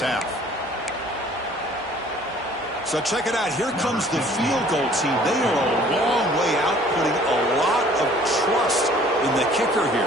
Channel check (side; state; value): both; normal; correlation 0.54